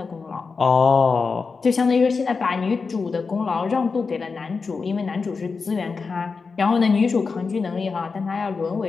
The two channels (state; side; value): quieter; right; 4.7 dB